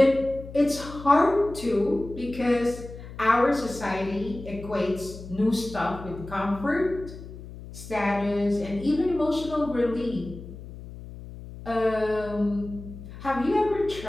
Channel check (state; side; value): noise; left; hum, 14 dB below the sound